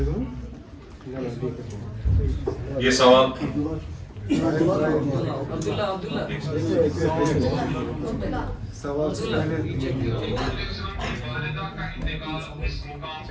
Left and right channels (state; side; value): identical; both; correlation 1.00